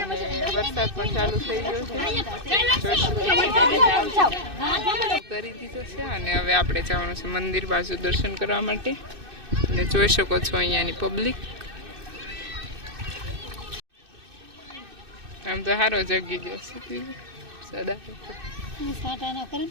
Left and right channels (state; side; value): late; left; 2.6 ms